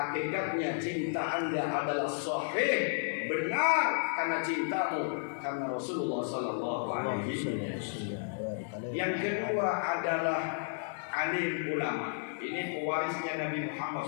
cinta Anda adalah sahih, benar, karena cintamu karena Rasulullah SAW. Yang kedua adalah alim ulama. Ini pewarisnya Nabi Muhammad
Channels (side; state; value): right; silent; digital silence